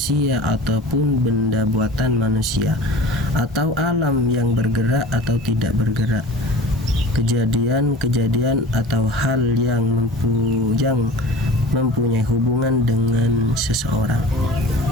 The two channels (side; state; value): both; normal; correlation 0.40